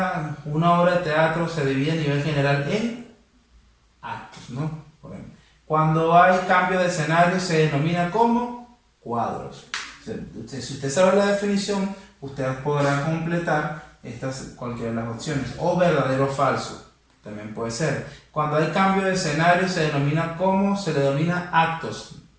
de teatro se divide a nivel general en actos, ¿no? Por ejemplo, cuando hay cambio de escenario se denomina como cuadros. Si usted sabe la definición, usted podrá completar cualquiera de las opciones. O verdadero o falso, también puede ser. Cuando hay cambio de escenario se le denomina actos.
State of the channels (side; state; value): both; identical; correlation 1.00